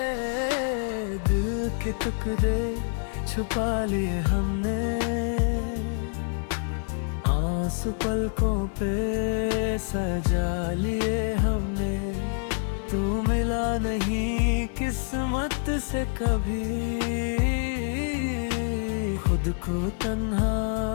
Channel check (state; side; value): silent; right; digital silence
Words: दिल के टुकड़े छुपा लिए हमने, आंसू पलकों पे सजा लिए हमने। तू मिला नहीं किस्मत से कभी, खुद को तन्हा